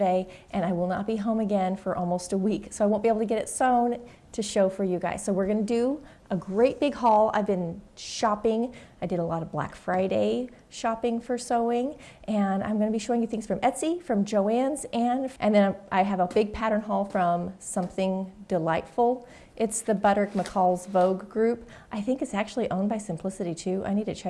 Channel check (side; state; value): both; identical; correlation 1.00